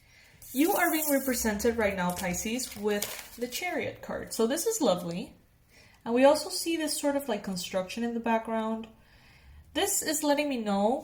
You are being represented right now, Pisces, with the Chariot card. So this is lovely. And we also see this sort of like construction in the background. This is letting me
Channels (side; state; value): both; identical; correlation 1.00